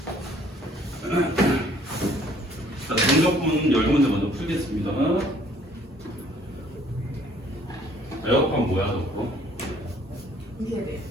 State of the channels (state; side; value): normal; both; correlation 0.59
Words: 자, 정적분 10문제 먼저 풀겠습니다. 에어컨 뭐야, 저거? 이세대.